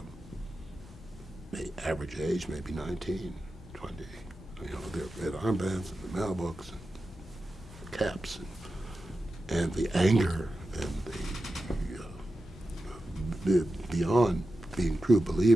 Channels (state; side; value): normal; both; correlation 0.92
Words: Average age, maybe 19, 20. Their red armbands and the mailbooks and the caps and the anger and the beyond being true